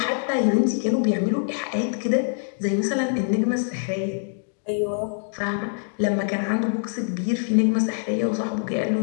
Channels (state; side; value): silent; right; digital silence